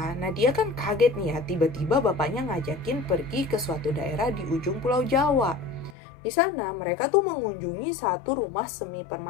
Nadia kan kaget nih ya, tiba-tiba bapaknya ngajakin pergi ke suatu daerah di ujung Pulau Jawa. Di sana mereka tuh mengunjungi satu rumah semi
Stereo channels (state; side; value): drops out; right; at 6.0 s